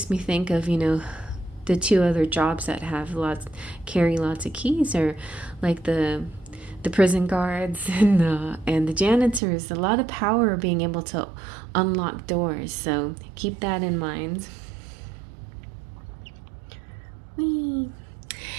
me think of, you know, the two other jobs that carry lots of keys, are like the prison guards and the janitors. A lot of power being able to unlock doors. So keep that in mind. Whee.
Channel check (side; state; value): left; drops out; at 9.4 s